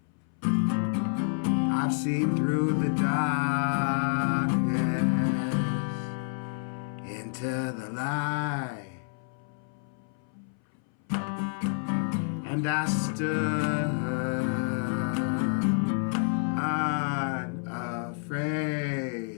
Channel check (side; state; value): right; silent; 59 dB below the other